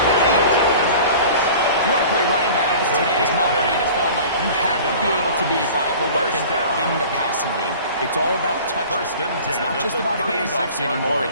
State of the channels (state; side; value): inverted; both; correlation -0.42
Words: 8. You want to play running back in today's modern NFL, Mike, you have to be able to be a viable weapon in the passing game. It's all about touch. It's not just about handoffs anymore.